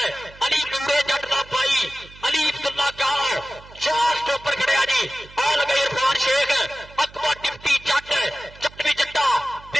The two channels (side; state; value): right; noise; hum, 21 dB below the sound